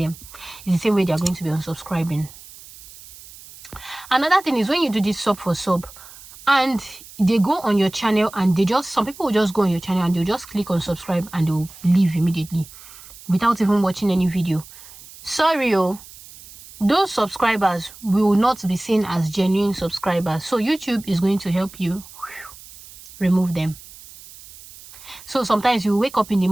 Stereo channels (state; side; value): noise; right; hiss, 19 dB below the sound